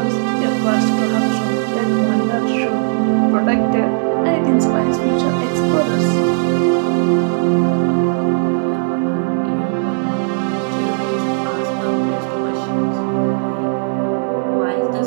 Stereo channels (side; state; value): left; silent; digital silence